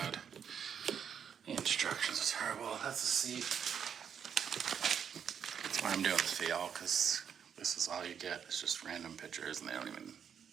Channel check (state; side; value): quieter; left; 7.8 dB